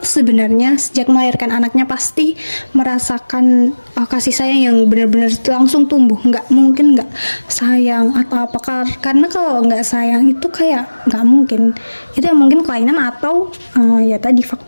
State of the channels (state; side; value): inverted; both; correlation -1.00